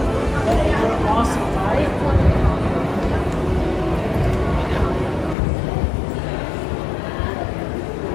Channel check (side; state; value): right; drops out; at 5.4 s